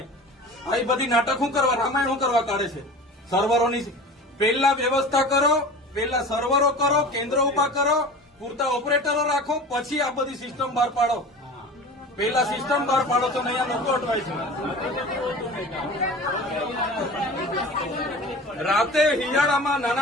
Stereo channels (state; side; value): normal; both; correlation 0.37